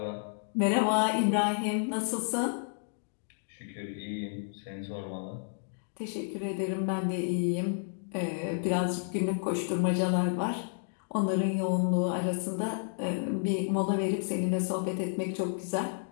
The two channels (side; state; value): right; silent; digital silence